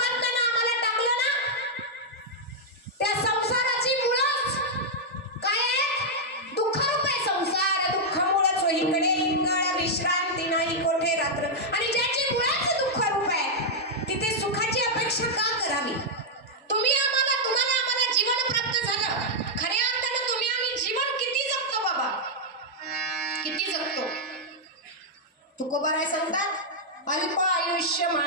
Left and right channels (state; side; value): normal; both; correlation -0.05